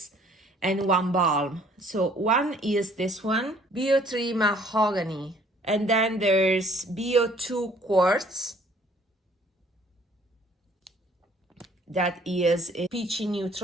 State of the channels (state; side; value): normal; both; correlation 0.58